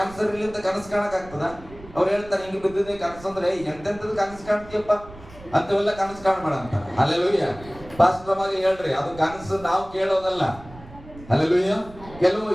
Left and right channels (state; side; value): noise; right; rumble, 19 dB below the sound